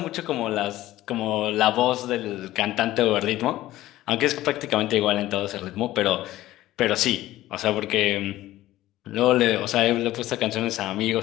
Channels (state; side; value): quieter; right; 15.5 dB